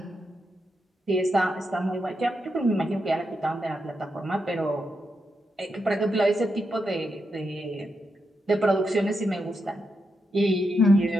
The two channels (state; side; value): normal; both; correlation 0.84